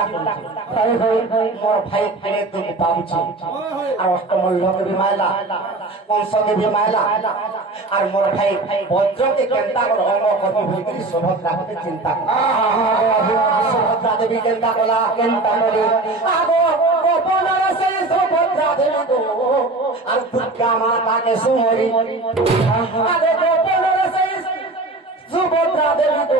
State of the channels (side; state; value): left; quieter; 3.1 dB